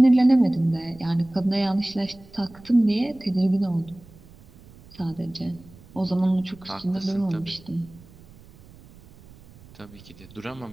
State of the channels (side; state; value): right; noise; rumble, 23 dB below the sound